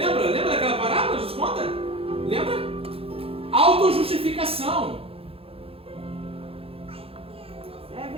daquela parábola? Jesus conta? Lembra? Autojustificação. É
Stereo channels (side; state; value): left; late; 0.27 ms